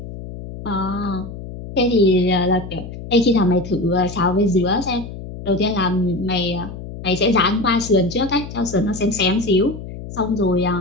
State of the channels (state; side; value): noise; left; hum, 11 dB below the sound